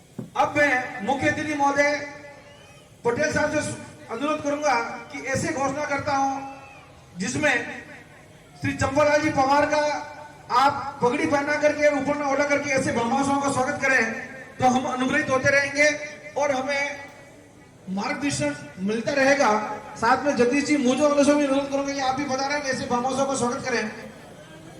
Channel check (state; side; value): identical; both; correlation 1.00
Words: अब मैं मुख्य अतिथि महोदय पटेल साहब से अनुरोध करूंगा कि ऐसे घोषणा करता हूं जिसमें श्री चंपालाल जी पवार का आप पगड़ी पहना करके ऊपर में ओढ़ा करके ऐसे ब्रह्माओं का स्वागत करें तो हम अनुग्रहित होते रहेंगे और हमें मार्गदर्शन मिलता रहेगा। साथ में जगदीश जी मुझे वालों से भी अनुरोध करूंगा कि आप भी बता रहे हैं ऐसे ब्रह्माओं का स्वागत करें।